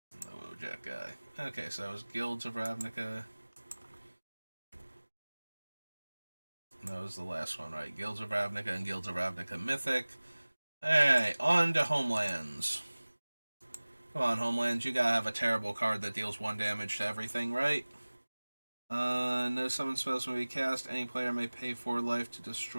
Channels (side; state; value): both; inverted; correlation -1.00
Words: The Wojak guy. Okay, so that was Guilds of Ravnica. That was the last one, right? Guilds of Ravnica and Guilds of Ravnica Mythic. Alright, on to Homelands. Come on, Homelands, you gotta have a terrible card that deals 1 damage to everything, right? No summon spells may be cast. Any player may pay 4 life to